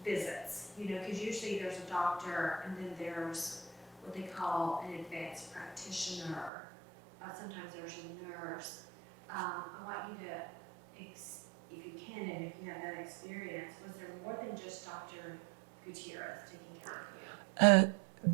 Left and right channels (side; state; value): left; drops out; at 6.5 s